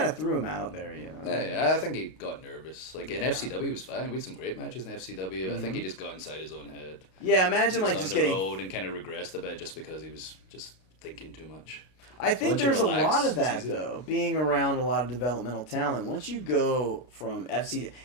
of threw him out there, you know. Yeah, I think he got nervous. Like in FCW, he was fine. We had some great matches in FCW. Mm-hmm. I think he just got inside his own head. Yeah, imagine like on just the getting road and kind of regressed a bit just because he was just thinking too much. I think Once you there's relax, a lot of it's that easy. though, being around a lot of developmental talent. Once you go from FC,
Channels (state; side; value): late; right; 33 ms